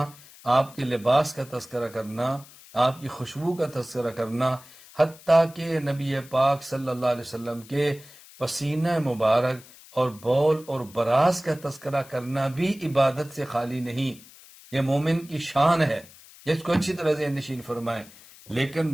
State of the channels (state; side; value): noise; left; hiss, 22 dB below the sound